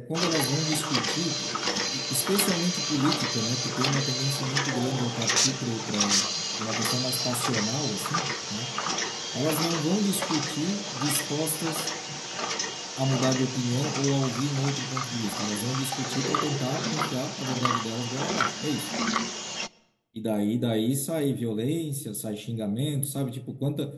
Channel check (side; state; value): both; identical; correlation 1.00